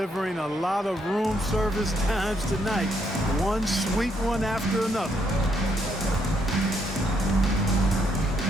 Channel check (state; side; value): normal; both; correlation 0.74